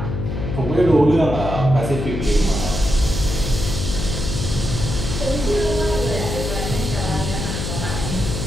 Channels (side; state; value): left; noise; hum, 3 dB below the sound